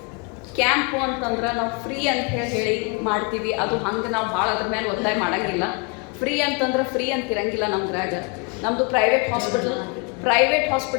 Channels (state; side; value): quieter; right; 31.8 dB